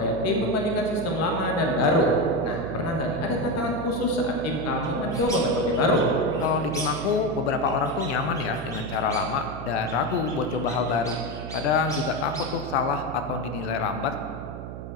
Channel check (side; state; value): right; noise; hum, 9 dB below the sound